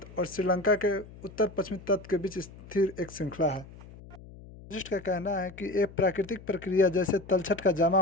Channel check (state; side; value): noise; left; hum, 18 dB below the sound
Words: और श्रीलंका के उत्तर पश्चिमी तट के बीच स्थिर एक श्रृंखला है। जियोलॉजिस्ट का कहना है कि एक प्राकृतिक प्रक्रिया जैसे तलछट का जमा